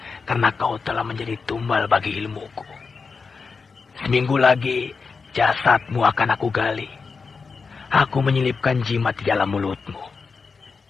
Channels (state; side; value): quieter; right; 4.9 dB